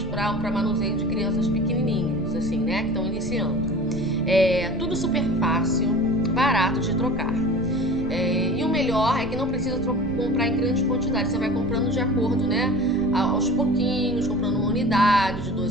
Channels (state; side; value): noise; right; rumble, 11 dB below the sound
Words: para manuseio de crianças pequenininhas, assim, né, que estão iniciando. Tudo super fácil, barato de trocar. E o melhor é que não precisa comprar em grandes quantidades. Você vai comprando de acordo, né, aos pouquinhos, comprando uma unidade, de